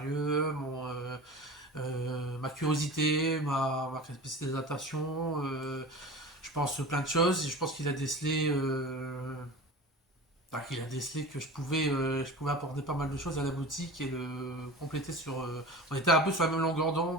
ma curiosité, ma capacité d'adaptation. Je pense plein de choses. Et je pense qu'il a décelé. Enfin, qu'il a décelé que je pouvais apporter pas mal de choses à la boutique et le compléter sur. On était un peu sur la même longueur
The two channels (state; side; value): normal; both; correlation 0.35